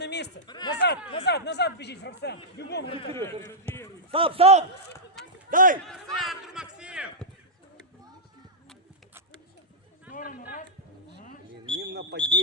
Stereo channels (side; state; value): both; normal; correlation -0.10